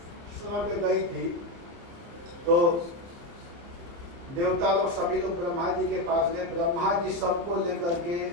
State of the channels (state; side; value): late; left; 30 ms